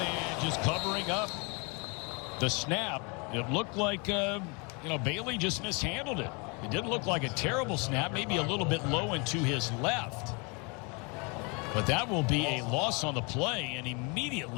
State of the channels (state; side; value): quieter; right; 31.6 dB